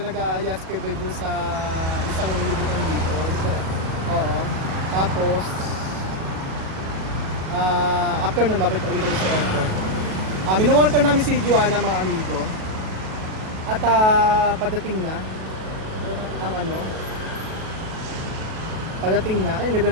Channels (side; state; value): left; late; 37 ms